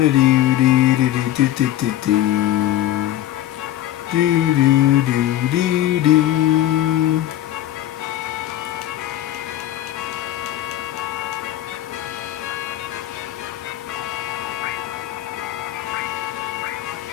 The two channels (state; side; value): quieter; right; 13.2 dB